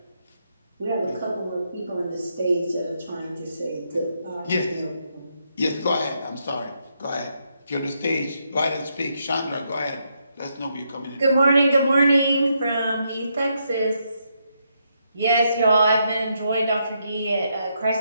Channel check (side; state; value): both; inverted; correlation -0.78